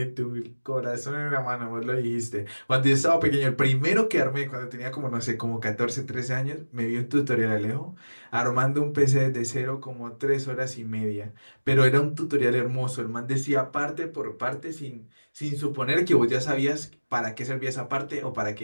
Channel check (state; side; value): inverted; both; correlation -1.00